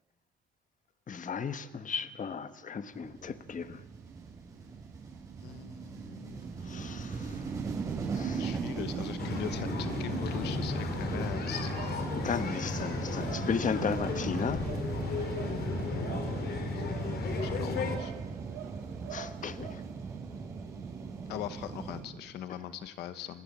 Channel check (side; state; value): both; normal; correlation 0.55